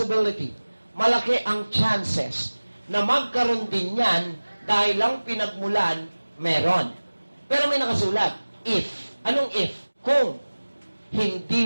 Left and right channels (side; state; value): both; inverted; correlation -1.00